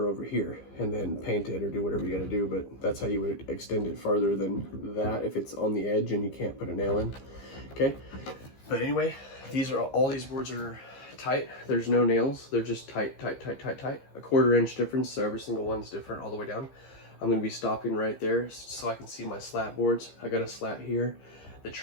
over here, and then paint it or do whatever you gotta do. But that's how you would extend it farther than that if it's on the edge and you can't put a nail in. Okay. But anyway, all these boards are tight. There's no nails. They're just tight, tight, tight, tight, tight. A 1/4 inch difference, so every single one's different all the way down. I'm going to be stopping right there so I can see my slat boards. I got a slat here, the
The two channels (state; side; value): late; right; 15 ms